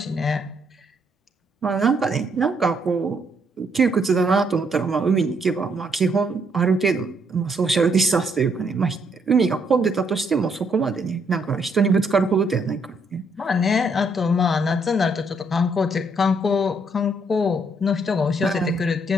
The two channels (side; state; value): both; normal; correlation 0.72